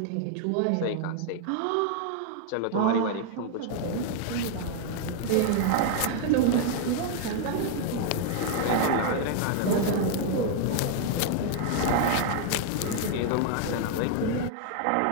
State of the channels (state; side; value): different; both; correlation 0.00